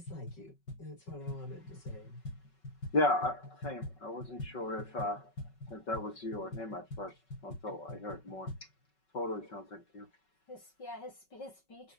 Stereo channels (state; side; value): late; right; 5.3 ms